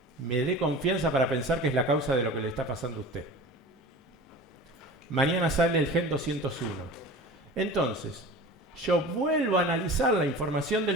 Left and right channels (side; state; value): both; normal; correlation 0.37